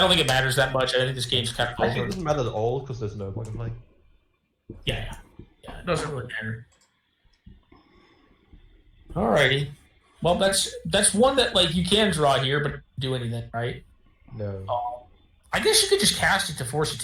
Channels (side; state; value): both; identical; correlation 1.00